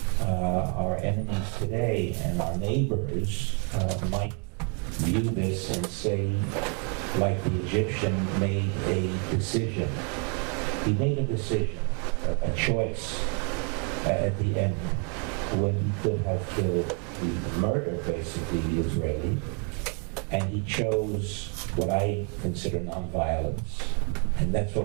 our enemies today and our neighbors might view this and say, like the Egyptian made a decision. He made a decision, a choice at the end, when he could have killed, murdered basically the Israeli, and he chose what I consider nonviolence, and that's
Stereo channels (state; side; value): quieter; left; 38.5 dB